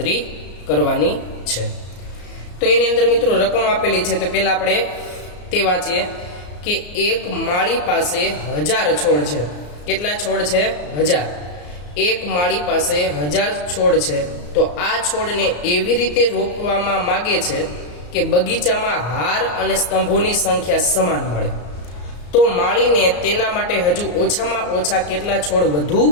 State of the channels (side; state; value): right; late; 34 ms